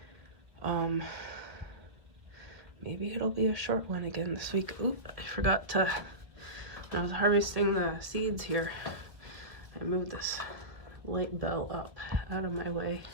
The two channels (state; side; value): late; left; 1.5 ms